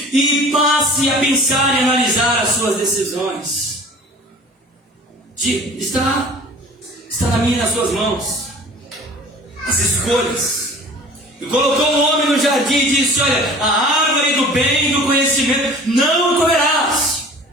e passe a pensar e analisar as suas decisões. Está na minha e nas suas mãos. As escolhas. E colocou o homem no jardim e disse: olha, a árvore do bem e do conhecimento não comerás.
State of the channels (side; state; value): both; normal; correlation 0.45